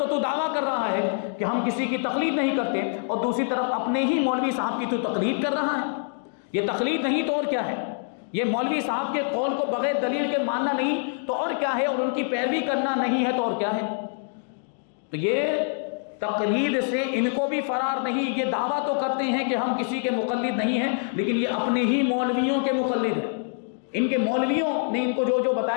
دعویٰ کر رہا ہے کہ ہم کسی کی تقلید نہیں کرتے، اور دوسری طرف اپنے ہی مولوی صاحب کی تو تقلید کر رہا ہے۔ یہ تقلید نہیں تو اور کیا ہے؟ یہ مولوی صاحب کے قول کو بغیر دلیل کے ماننا نہیں تو اور کیا ہے؟ اور ان کی پیروی کرنا نہیں ہے تو اور کیا ہے؟ تو یہ تقلید سے ان کو بھی فرار نہیں۔ یہ دعویٰ تو کرتے ہیں کہ ہم کسی کے مقلد نہیں ہیں، لیکن یہ اپنے ہی مولویوں کے مقلد ہیں، ان کے مولویوں نے ان کو جو جو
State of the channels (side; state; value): right; silent; 61 dB below the other